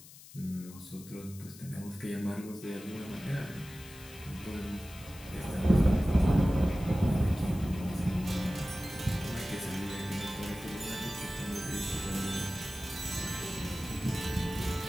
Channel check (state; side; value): noise; left; hiss, 18 dB below the sound